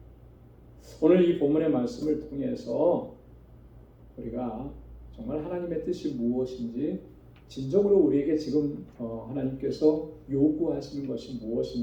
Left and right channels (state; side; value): identical; both; correlation 1.00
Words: 오늘 이 본문의 말씀을 통해서 우리가 정말 하나님의 뜻이 무엇인지 진정으로 우리에게 지금 하나님께서 요구하시는 것이